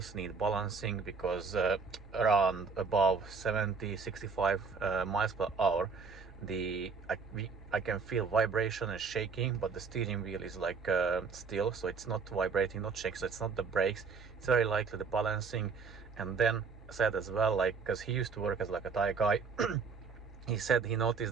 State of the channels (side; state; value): left; quieter; 5.1 dB